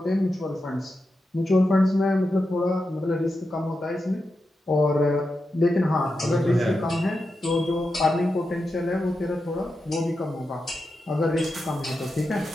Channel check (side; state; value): both; normal; correlation 0.89